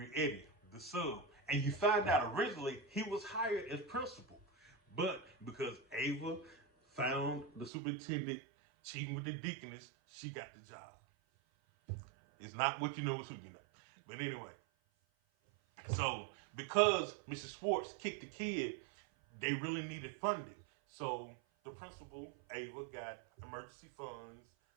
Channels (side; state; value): left; drops out; at 7.7 s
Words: Eddy, the sub. And you find out originally he was hired as principal. But because Ava found the superintendent cheating with the deaconess, she got the job. It's not what you know, it's who you know. But anyway, so because Mrs. Schwartz kicked the kid, they really needed funding. So the principal, Ava, got emergency funds